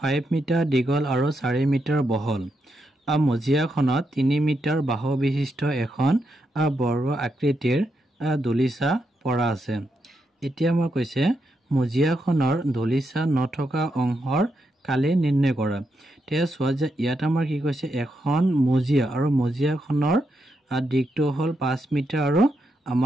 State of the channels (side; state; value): both; normal; correlation 0.83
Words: 5 মিটাৰ দীঘল আৰু 4 মিটাৰ বহল মজিয়াখনত 3 মিটাৰ বাহু বিশিষ্ট এখন বৰ্গ আকৃতিৰ দলিচা পৰা আছে এতিয়া আমাৰ কৈছে মজিয়াখনৰ দলিচা নথকা অংশৰ কালি নিৰ্ণয় কৰা তে চোৱা যে ইয়াত আমাৰ কি কৈছে এখন মজিয়া আৰু মজিয়াখনৰ দিকটো হ'ল 5 মিটাৰ আৰু